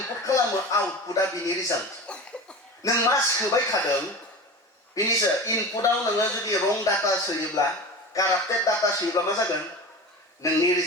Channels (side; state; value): both; normal; correlation 0.31